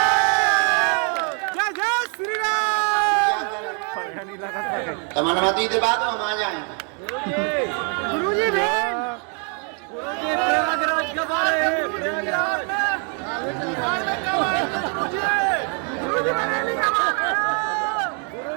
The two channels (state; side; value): quieter; left; 39.5 dB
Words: तुम अनुमति दे बाद हम आ जाएंगे। गुरुजी प्रयागराज कब आ रहे हैं?